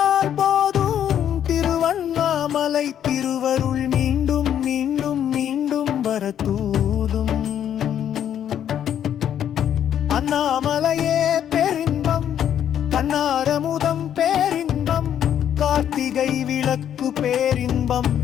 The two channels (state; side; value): quieter; right; 9.8 dB